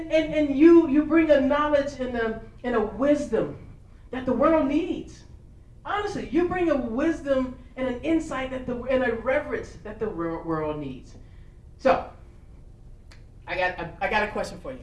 you bring a knowledge and a wisdom that the world needs. Honestly, you bring a wisdom and an insight and a reverence that the world needs. So, I got a question for you.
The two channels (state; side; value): identical; both; correlation 1.00